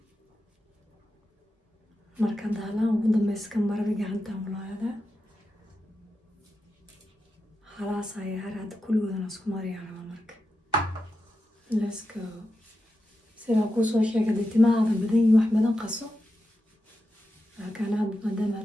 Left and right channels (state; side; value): normal; both; correlation 0.89